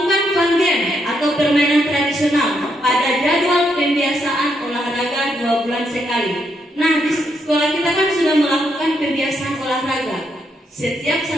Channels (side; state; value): both; normal; correlation 0.78